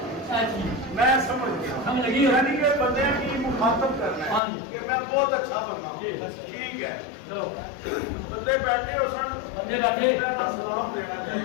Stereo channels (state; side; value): drops out; right; at 4.4 s